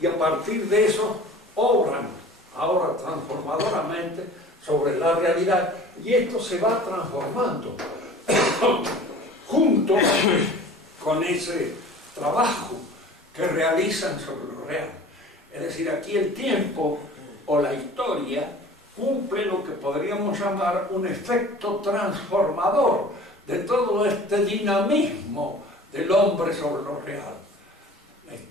y a partir de eso obran ahora transformadoramente sobre la realidad y esto se va transformando junto con ese trabajo que realizan sobre lo real. Es decir, aquí el tiempo o la historia cumple lo que podríamos llamar un efecto transformador de todo este dinamismo del hombre sobre lo real. La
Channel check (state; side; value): normal; both; correlation 0.44